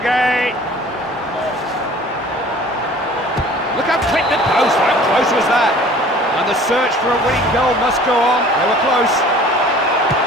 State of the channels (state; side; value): normal; both; correlation 0.48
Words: Look how quick the post. How close was that? And the search for a winning goal must go on. They were close.